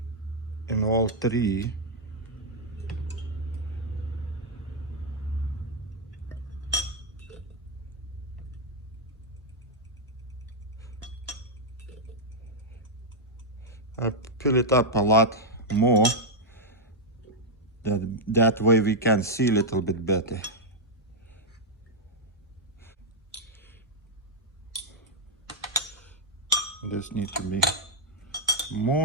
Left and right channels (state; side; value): normal; both; correlation -0.03